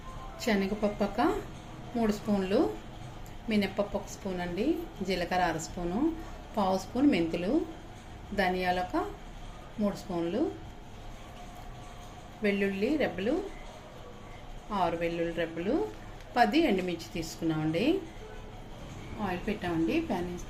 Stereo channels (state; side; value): identical; both; correlation 1.00